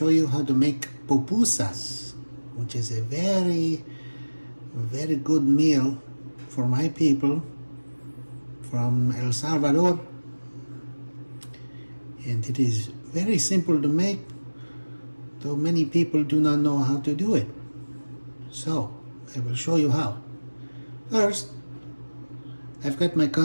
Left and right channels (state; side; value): inverted; both; correlation -1.00